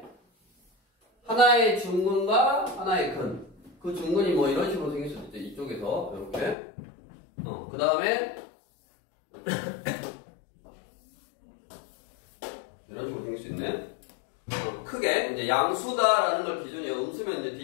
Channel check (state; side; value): drops out; right; at 6.6 s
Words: 하나의 중근과 하나의 근. 그 중근이 뭐 이런 식으로 생길 수도 있죠. 이쪽에서 이렇게 그 다음에 이런 식으로 생길 수 있네. 크게 이제 양수다라는 걸 기준이에요. 음수면 이제